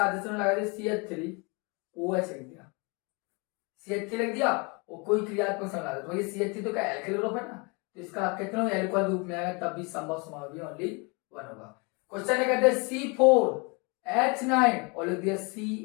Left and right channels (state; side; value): quieter; right; 30.7 dB